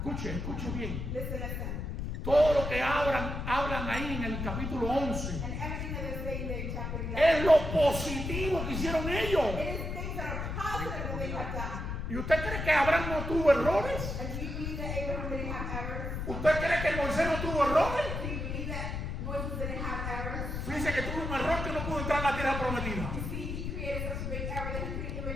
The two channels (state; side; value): noise; left; rumble, 4 dB below the sound